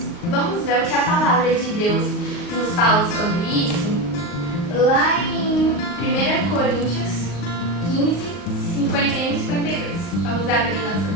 Vamos ver o que a palavra de Deus nos fala sobre isso? Lá em 1 Coríntios 15, 51 e 52. Vamos abrir nossa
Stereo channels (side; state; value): right; late; 38 ms